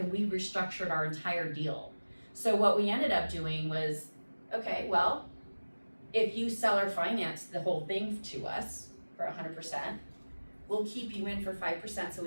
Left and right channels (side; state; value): both; inverted; correlation -1.00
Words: we restructured our entire deal. So what we ended up doing was, okay, well, if you seller finance the whole thing to us for 100%, we'll keep you in for 5% so